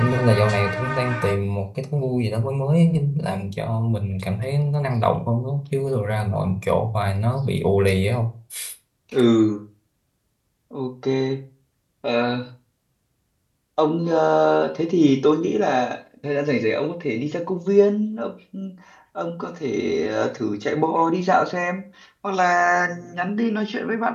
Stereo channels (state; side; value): identical; both; correlation 1.00